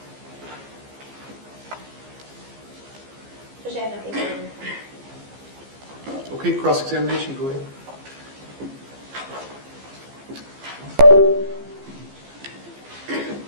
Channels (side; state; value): left; late; 15 ms